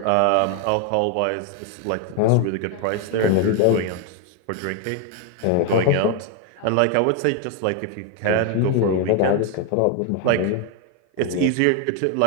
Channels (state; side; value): different; both; correlation 0.01